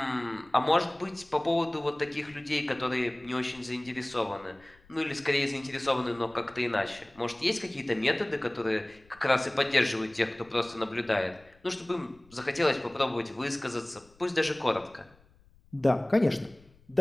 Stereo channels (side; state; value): left; noise; rumble, 28 dB below the sound